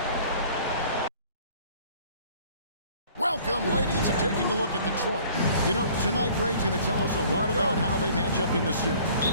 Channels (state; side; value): inverted; both; correlation -0.52